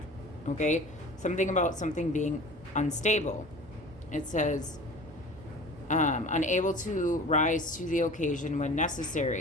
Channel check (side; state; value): both; normal; correlation 0.41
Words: okay? Something about something being unstable. It says unable to rise to the occasion when